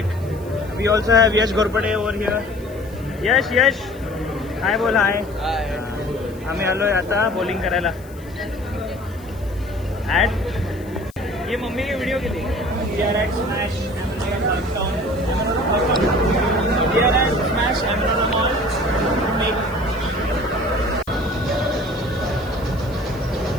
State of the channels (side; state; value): left; noise; hiss, 25 dB below the sound